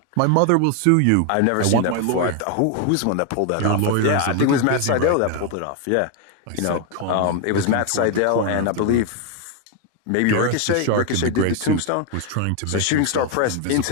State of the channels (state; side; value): different; both; correlation 0.01